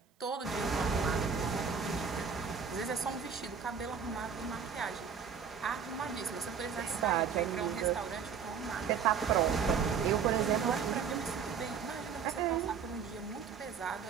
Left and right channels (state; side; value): quieter; left; 6.6 dB